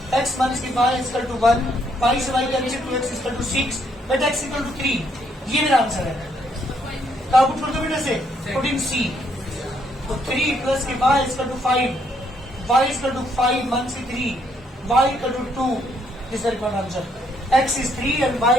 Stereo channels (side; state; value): both; normal; correlation 0.71